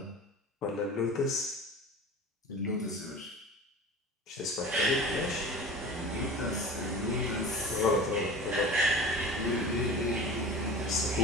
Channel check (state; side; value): normal; both; correlation 0.36